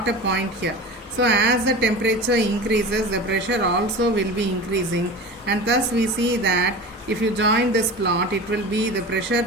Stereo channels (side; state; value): both; normal; correlation 0.32